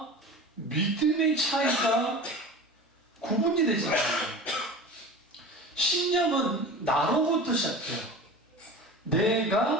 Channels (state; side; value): normal; both; correlation 0.34